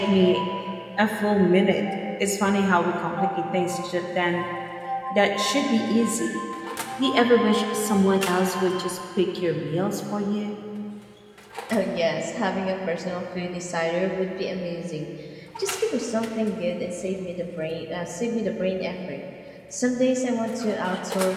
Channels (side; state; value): both; identical; correlation 1.00